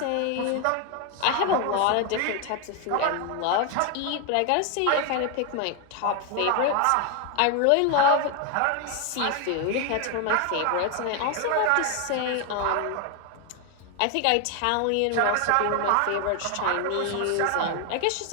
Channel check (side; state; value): both; different; correlation 0.01